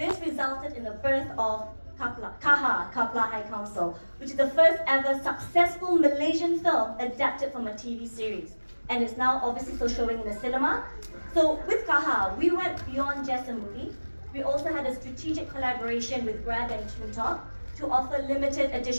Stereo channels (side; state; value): both; inverted; correlation -1.00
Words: resulted in the birth of Kapla High Council, which is the first ever successful Malaysian film adapted from a TV series. And it's now obviously still showing in the cinema. So with Kaha, we went beyond just a movie. We also had a strategic collaboration with Grab and TuneTalk to offer limited